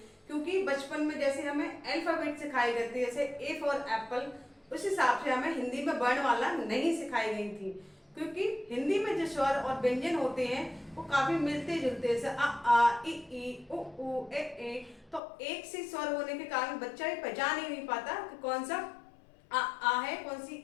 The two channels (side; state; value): right; drops out; at 15.2 s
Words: क्योंकि बचपन में जैसे हमें अल्फाबेट सिखाई गई थी, जैसे ए फॉर एप्पल, उस हिसाब से हमें हिंदी में वर्णमाला नहीं सिखाई गई थी। क्योंकि हिंदी में जो स्वर और व्यंजन होते हैं वो काफी मिलते जुलते हैं, आ ई उ ए। तो एक से स्वर होने के कारण बच्चा ही पहचान ही नहीं पाता कि कौन सा आ है, कौन सी